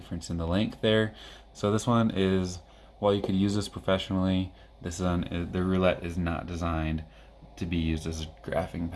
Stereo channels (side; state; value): both; identical; correlation 1.00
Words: in the length there. So this one is, while you could use this professionally, the Roulette is not designed to be used as a graphing